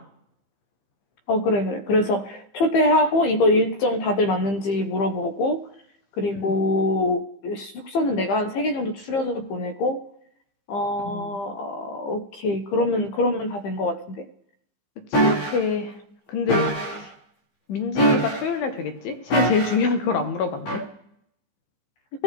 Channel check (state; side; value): late; right; 15 ms